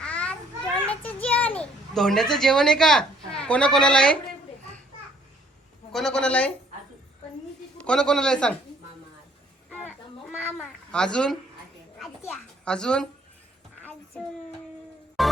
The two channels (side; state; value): both; normal; correlation 0.62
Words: धोंड्याचं जेवण आहे का? कोणा कोणाला आहे? कोणा कोणाला आहे? कोणा कोणाला आहे सांग. अजून अजून